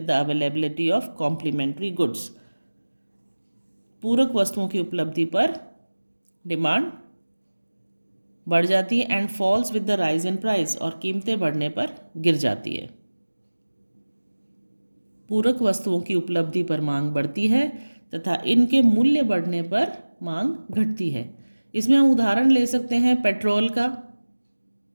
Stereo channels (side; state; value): both; inverted; correlation -1.00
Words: the availability of complementary goods. पूरक वस्तुओं की उपलब्धि पर डिमांड बढ़ जाती है। And falls with the rise in price, और कीमतें बढ़ने पर गिर जाती है। पूरक वस्तुओं की उपलब्धि पर मांग बढ़ती है तथा इनके मूल्य बढ़ने पर मांग घटती है। इसमें हम उदाहरण ले सकते हैं पेट्रोल का।